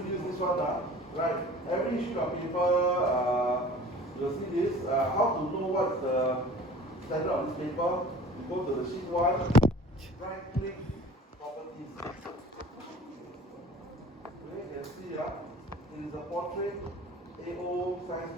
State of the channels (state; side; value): normal; both; correlation 0.45